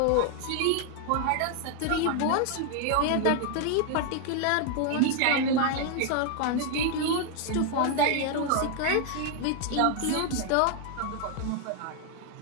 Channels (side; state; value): both; different; correlation 0.00